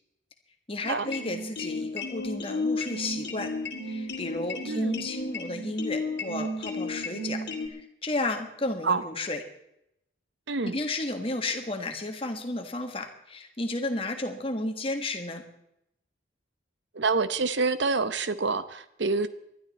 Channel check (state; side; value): normal; both; correlation 0.14